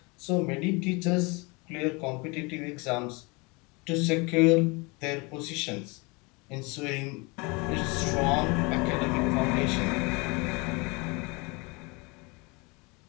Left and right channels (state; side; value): quieter; right; 27.8 dB